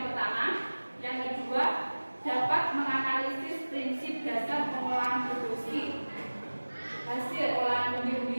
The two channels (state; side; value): inverted; both; correlation -1.00